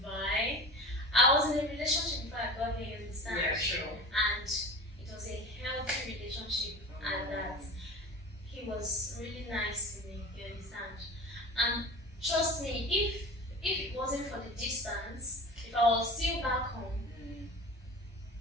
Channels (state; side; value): normal; both; correlation 0.34